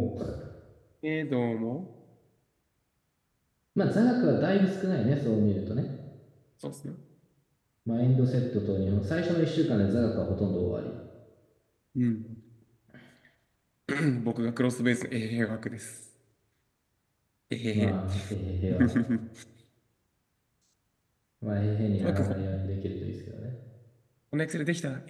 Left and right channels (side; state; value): both; identical; correlation 1.00